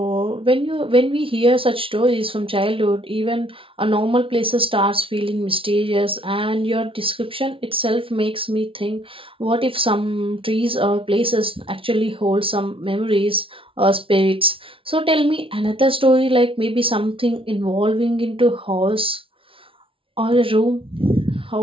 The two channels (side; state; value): left; late; 0.26 ms